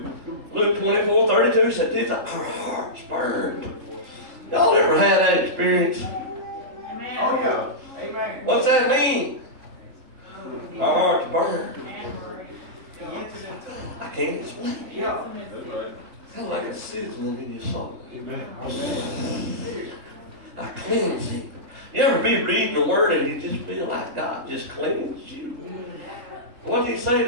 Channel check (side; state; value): left; late; 4.0 ms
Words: Luke 2. Luke 24, 32 said, did our hearts burned? Y'all ever had that experience? Amen. Oh, yeah. Amen. What's that mean? Our hearts burned. I can't explain it. Yeah. That's right. Kind of like a sizzling in your soul. Amen. I cleanse him. You ever be reading the word and you just feel like God just cleansed you? What did he say